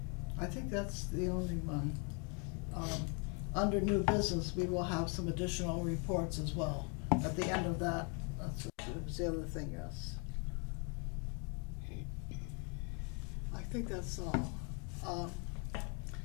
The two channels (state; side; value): quieter; right; 36.0 dB